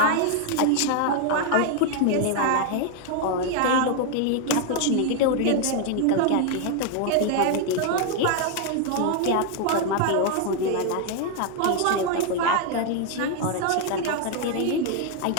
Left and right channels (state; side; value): different; both; correlation 0.00